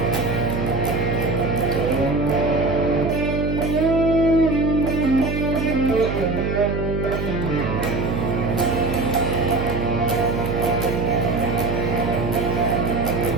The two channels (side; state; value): right; noise; hum, 2 dB below the sound